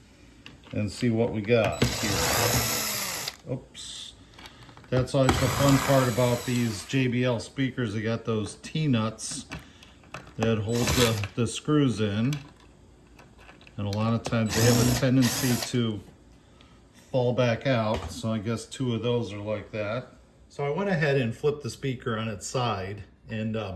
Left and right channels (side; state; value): both; identical; correlation 1.00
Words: and see what we got here. Oops. That's always the fun part about these JBL speakers. They got those T-nuts that hold the screws in, and a lot of times they have a tendency to fall back out, so I guess two of those are like that. So I went ahead and flipped the speaker on its side and